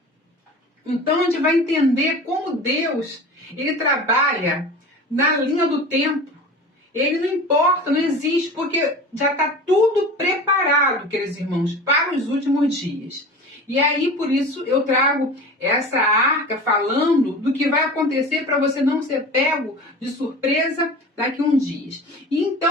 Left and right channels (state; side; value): normal; both; correlation 0.35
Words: Então a gente vai entender como Deus ele trabalha na linha do tempo. Ele não importa, não existe, porque já está tudo preparado, queridos irmãos, para os últimos dias. E aí, por isso, eu trago essa arca falando do que vai acontecer para você não ser pego de surpresa daqui a uns dias. E